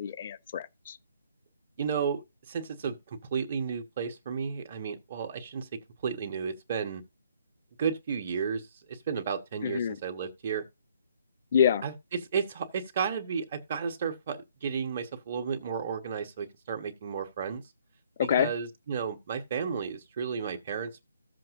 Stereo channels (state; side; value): inverted; both; correlation -0.59